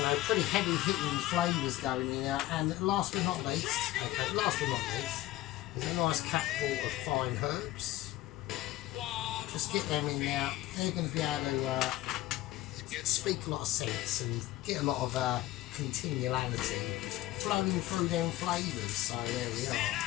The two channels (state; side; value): quieter; right; 16.0 dB